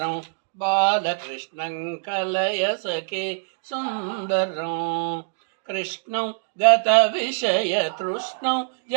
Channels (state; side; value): silent; left; digital silence